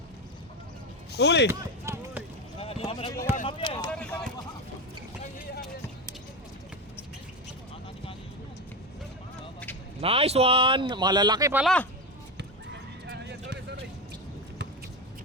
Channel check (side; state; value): both; normal; correlation 0.16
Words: Uli! Nice one! Malalaki pala!